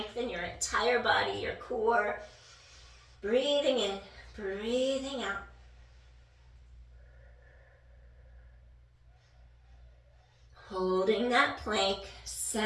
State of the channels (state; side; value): identical; both; correlation 1.00